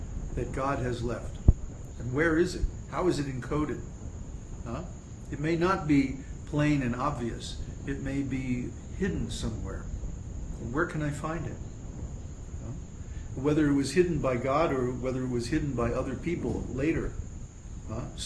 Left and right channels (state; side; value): identical; both; correlation 1.00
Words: that God has left? And where is it? How is it encoded? It may not be plain and obvious. It may be hidden somewhere. Where can I find it? Whether it was hidden by God or whether it was hidden by other people later,